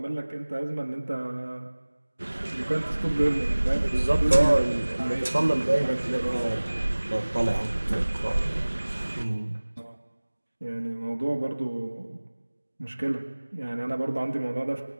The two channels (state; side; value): inverted; both; correlation -1.00